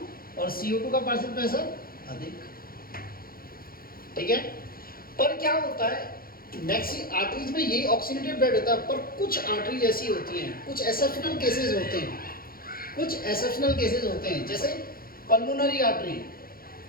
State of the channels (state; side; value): late; right; 0.42 ms